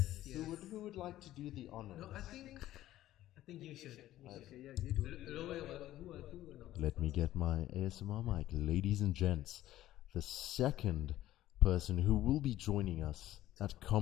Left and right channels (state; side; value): quieter; right; 14.2 dB